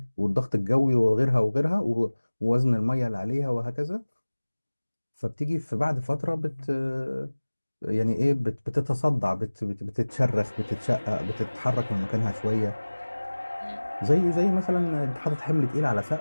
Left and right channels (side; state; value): both; inverted; correlation -1.00